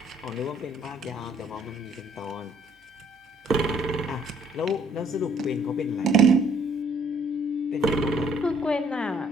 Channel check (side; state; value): both; normal; correlation 0.63